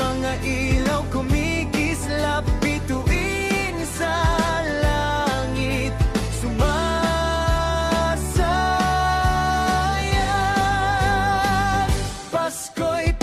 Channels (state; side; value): identical; both; correlation 1.00